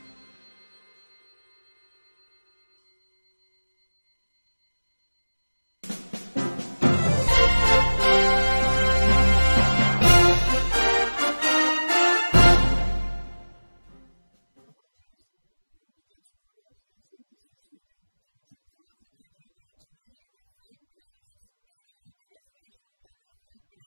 Congress, you will get to know that yes, NDC is ready to take part. So after that, you're going to the flag bearer. Your next big or your biggest election will be the flag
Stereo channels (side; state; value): both; inverted; correlation -1.00